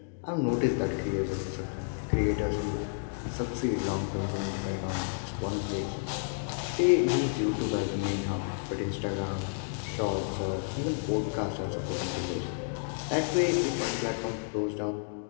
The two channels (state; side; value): silent; right; digital silence